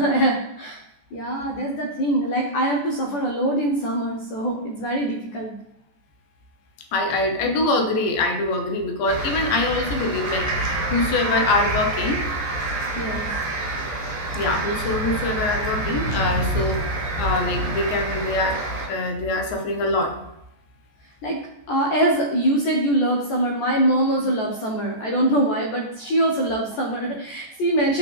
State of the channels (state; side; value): late; right; 14 ms